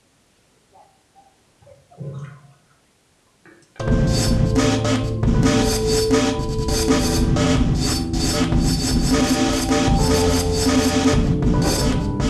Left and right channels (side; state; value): both; identical; correlation 1.00